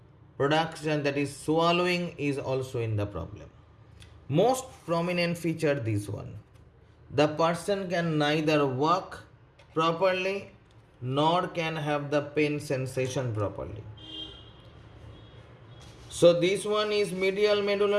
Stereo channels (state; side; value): identical; both; correlation 1.00